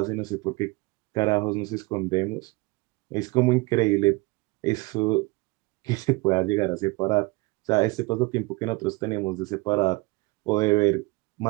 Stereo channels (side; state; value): left; quieter; 24.0 dB